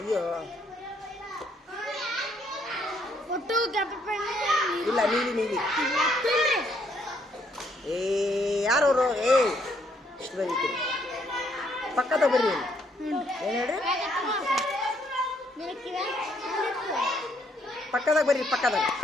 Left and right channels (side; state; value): both; normal; correlation 0.70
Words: ಇಲ್ಲ, ನೀಲಿ ನೀಲಿ. ಏ ಯಾರವರು? ಇಷ್ಟು ಬರೀತೀರಿ. ಪಕ್ಕದ ಬರ್ರಿ. ಏನು ಹೇಳ್ರಿ? ಪಕ್ಕದಾಗ ಬರ್ರಿ, ಪಕ್ಕದಾಗ.